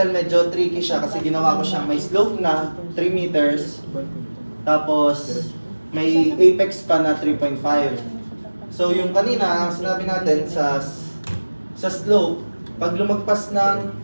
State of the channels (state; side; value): inverted; both; correlation -1.00